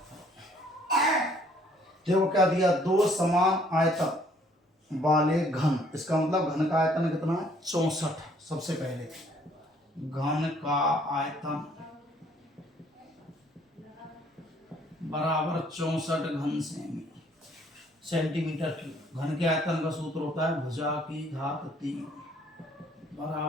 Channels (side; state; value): both; normal; correlation 0.62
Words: देखो क्या दिया? दो समान आयतन वाले घन, इसका मतलब घन का आयतन कितना है? 64। सबसे पहले घन का आयतन बराबर 64 घन सेमी सेंटीमीटर क्यूब। घन के आयतन का सूत्र होता है भुजा की घात 3